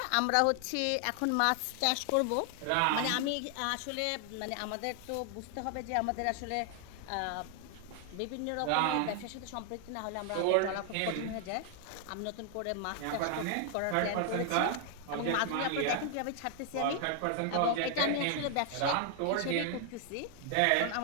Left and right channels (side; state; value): both; different; correlation 0.00